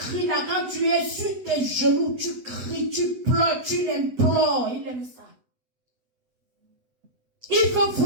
là. Quand tu es sur tes genoux, tu cries, tu pleures, tu l'implores. Il aime ça. Il veut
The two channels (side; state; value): left; late; 8.0 ms